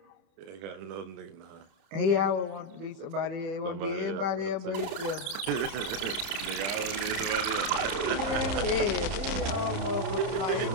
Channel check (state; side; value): late; left; 30 ms